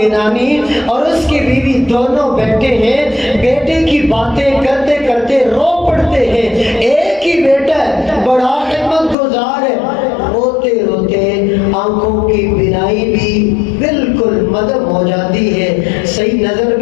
اور اس کی بیوی دونوں بیٹھے ہیں، بیٹے کی باتیں کرتے کرتے رو پڑتے ہیں۔ ایک ہی بیٹا ہے، بڑا خدمت گزار ہے، روتے روتے آنکھوں کی بینائی بھی بالکل مدم ہو جاتی ہے، صحیح نظر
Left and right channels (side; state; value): right; drops out; at 9.2 s